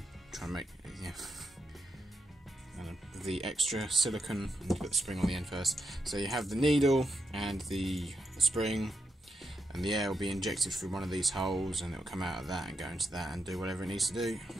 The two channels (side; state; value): both; normal; correlation 0.85